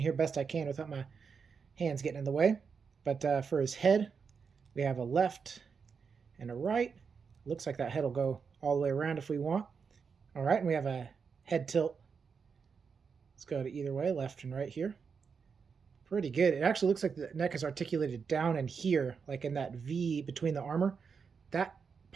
best I can without my hands getting in the way. But for his head, we have a left and a right. Looks like that head will go all the way around if we want. Alright, and we have a head tilt. Let's go to either way, left and right here. Pretty good. It actually looks like the neck is articulated down in here, like in that V between the armor. That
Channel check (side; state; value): left; quieter; 5.8 dB